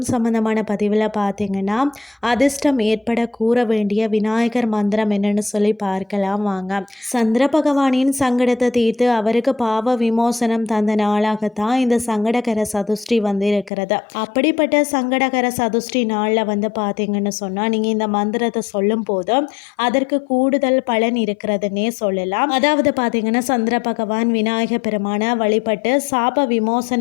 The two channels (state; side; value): drops out; right; at 13.7 s